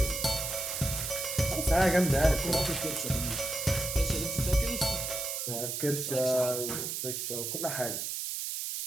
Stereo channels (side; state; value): right; noise; hiss, 3 dB below the sound